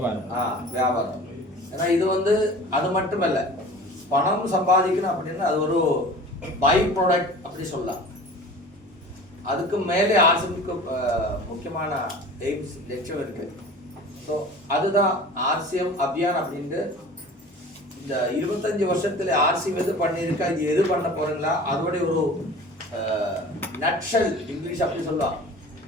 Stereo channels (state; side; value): normal; both; correlation 0.41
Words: வியாபாரம். ஏன்னா இது வந்து அது மட்டும் இல்லை, பணம் சம்பாதிக்கணும் அப்படின்னா அது ஒரு பை ப்ராடக்ட் அப்படி சொல்லலாம். அதுக்கு மேலே ஆர்சிஎம்க்கு முக்கியமான எய்ம்ஸ், லட்சியம் இருக்கு. ஸோ அதுதான் ஆர்சிஎம் அபியான் அப்படின்ட்டு. இந்த 25 வருஷத்துல ஆர்சிஎம் எது பண்ணியிருக்கா, இது எது பண்ண போறீங்களா, அதோட ஒரு நட்ஷல் இங்கிலீஷ் அப்படி சொல்லலாம்,